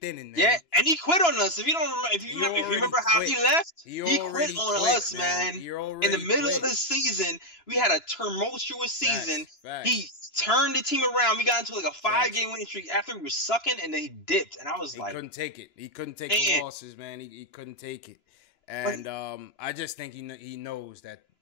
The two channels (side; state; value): right; late; 2.9 ms